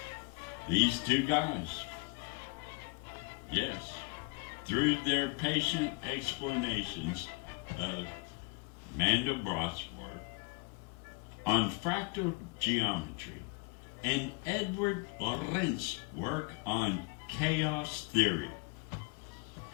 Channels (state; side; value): quieter; right; 28.9 dB